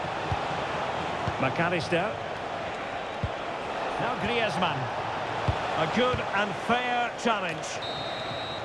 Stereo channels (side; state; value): both; identical; correlation 1.00